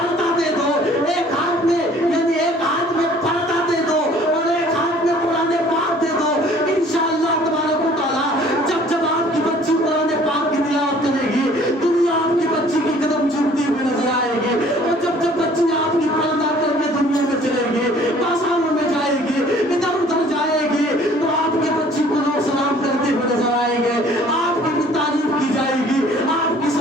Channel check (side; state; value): both; normal; correlation 0.54